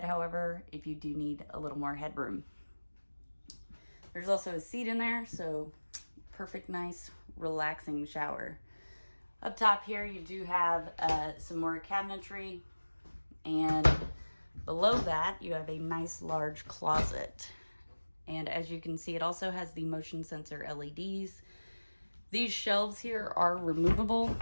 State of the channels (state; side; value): inverted; both; correlation -1.00